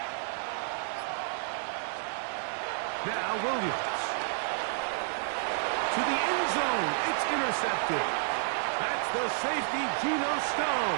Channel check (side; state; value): left; silent; digital silence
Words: Now Williams. To the end zone. It's intercepted. That's the safety, Geno